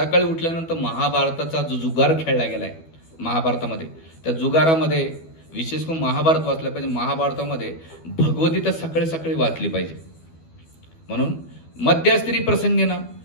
उठल्यानंतर महाभारताचा जो जुगार खेळला गेलाय महाभारतामध्ये, त्या जुगारामध्ये विशेष करून महाभारत वाचलं पाहिजे. महाभारतामध्ये भगवद्गीता सकाळी सकाळी वाचली पाहिजे. म्हणून मध्यस्त्री प्रसंगी ना,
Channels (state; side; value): late; right; 12 ms